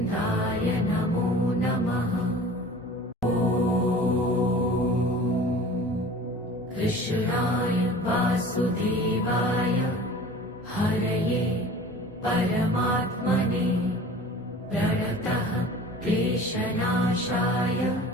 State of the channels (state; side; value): normal; both; correlation 0.42